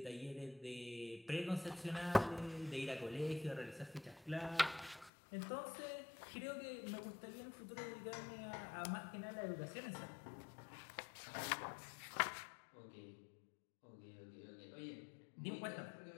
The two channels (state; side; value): drops out; right; at 5.1 s